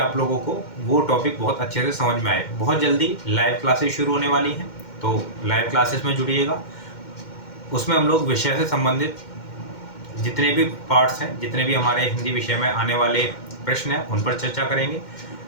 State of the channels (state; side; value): late; right; 2.1 ms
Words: लोगों को वो टॉपिक बहुत अच्छे से समझ में आए। बहुत जल्दी लाइव क्लासेस शुरू होने वाली हैं, तो लाइव क्लासेस में जुड़िएगा, उसमें हम लोग विषय से संबंधित जितने भी पार्ट्स हैं, जितने भी हमारे हिंदी विषय में आने वाले प्रश्न हैं उन पर चर्चा करेंगे,